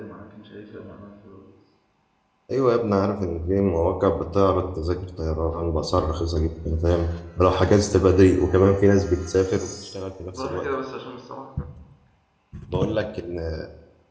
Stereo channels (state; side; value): identical; both; correlation 1.00